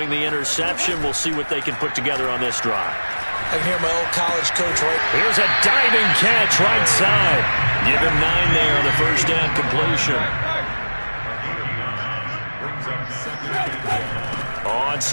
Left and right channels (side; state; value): both; inverted; correlation -1.00